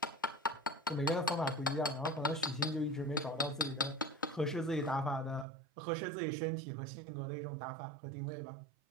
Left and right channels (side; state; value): left; drops out; at 5.5 s